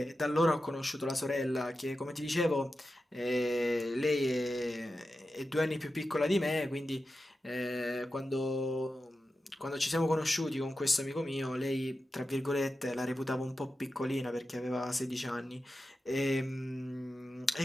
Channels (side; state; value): both; normal; correlation 0.91